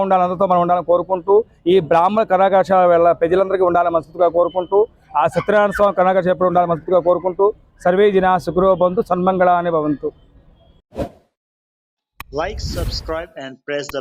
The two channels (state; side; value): identical; both; correlation 1.00